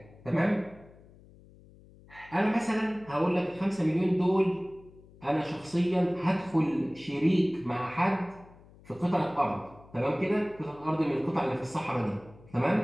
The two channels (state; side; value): noise; left; hum, 24 dB below the sound